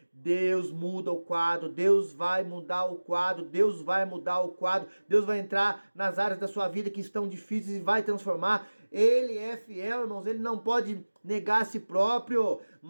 Deus muda o quadro, Deus vai mudar o quadro, Deus vai mudar o quadro, Deus vai entrar nas áreas da sua vida que estão difíceis e vai transformar. Ele é fiel, irmãos, ele não pode negar a si próprio,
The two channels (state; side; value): inverted; both; correlation -1.00